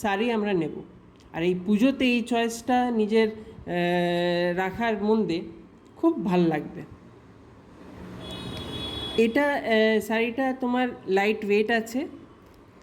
শাড়ি আমরা নেব। আর এই পুজোতে এই চয়েসটা নিজের রাখার মধ্যে খুব ভাল লাগবে। এটা শাড়িটা তোমার লাইট ওয়েট আছে,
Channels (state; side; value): identical; both; correlation 1.00